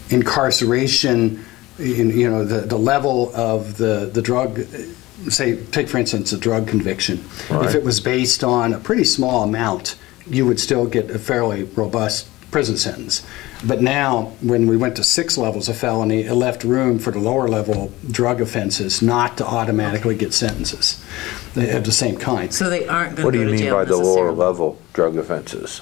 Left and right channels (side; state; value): right; quieter; 19.0 dB